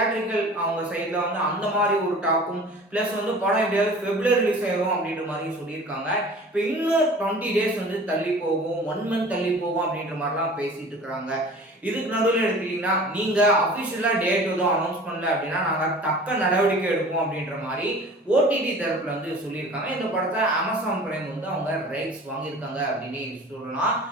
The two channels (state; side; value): normal; both; correlation 0.43